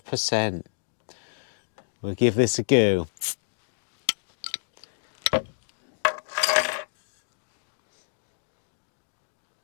We'll give this a go.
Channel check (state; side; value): silent; right; digital silence